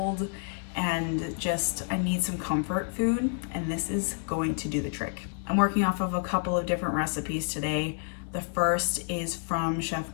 and just, I need some comfort food, and this is going to do the trick. I'm working off of a couple of different recipes today. The first is from Chef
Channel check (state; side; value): silent; right; 58 dB below the other